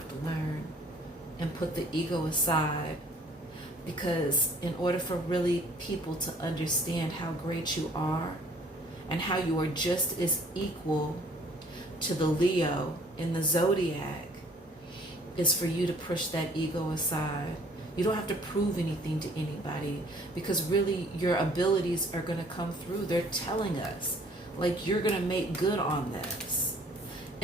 to learn and put the ego aside. Because in order for really people to understand how great you are and how you are just as equal to the Leo in the zodiac, is for you to push that ego aside. You don't have to prove anything to anybody, because really your abilities are going to come through. They're telling us, like, you're going to make good on this.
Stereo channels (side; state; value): both; normal; correlation 0.57